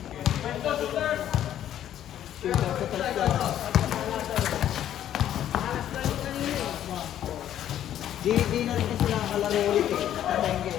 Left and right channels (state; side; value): quieter; right; 11.2 dB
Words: Di na rin kasi nakakalaro ulit eh. Nakatengge,